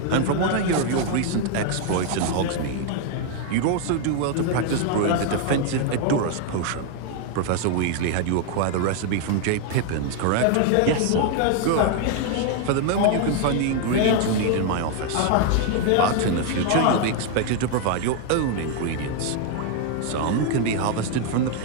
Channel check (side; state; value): both; different; correlation 0.00